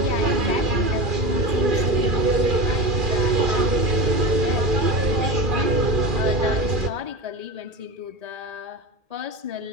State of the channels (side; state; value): left; late; 2.4 ms